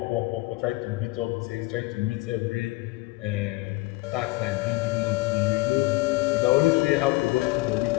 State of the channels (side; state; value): right; quieter; 21.4 dB